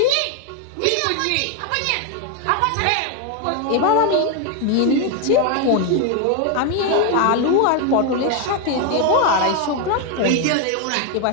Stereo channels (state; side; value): different; both; correlation 0.01